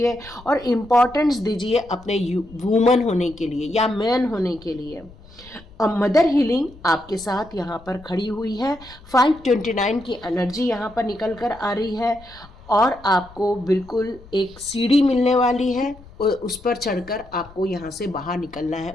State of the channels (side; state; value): left; noise; rumble, 21 dB below the sound